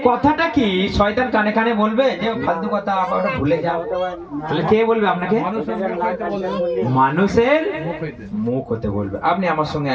কথাটা কি শয়তান কানে কানে বলবে যে ফালতু কথা আবার ভুলে যাও? তাহলে কে বলবে আপনাকে? মানুষের মুখ হতে বলবে। আপনি আমার সঙ্গে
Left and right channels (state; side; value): identical; both; correlation 1.00